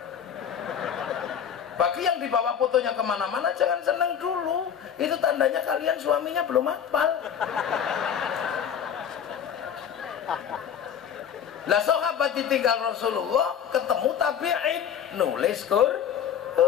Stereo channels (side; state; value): right; quieter; 8.4 dB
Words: Bagi yang dibawa fotonya kemana-mana jangan seneng dulu, itu tandanya kalian suaminya belum hafal. Lah sahabat ditinggal Rasulullah, ketemu tabi'in, nulis